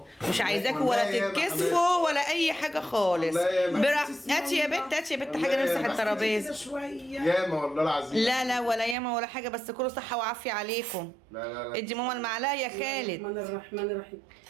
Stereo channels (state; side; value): drops out; left; at 9.0 s